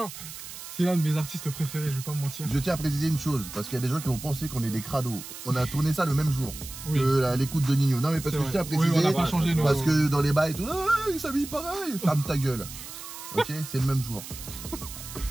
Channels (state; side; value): noise; right; hiss, 12 dB below the sound